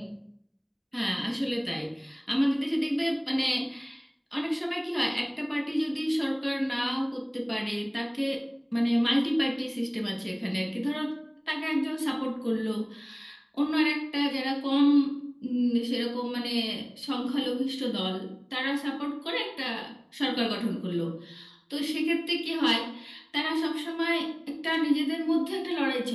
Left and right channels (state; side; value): identical; both; correlation 1.00